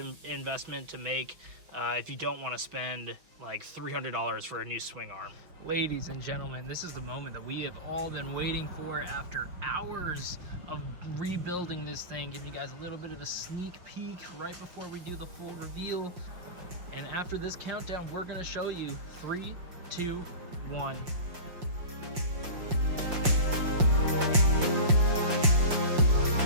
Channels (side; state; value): left; late; 5.7 ms